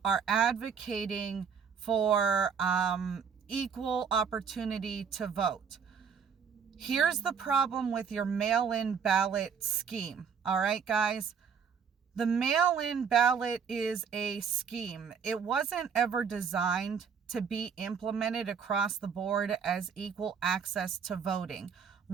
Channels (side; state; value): left; quieter; 6.6 dB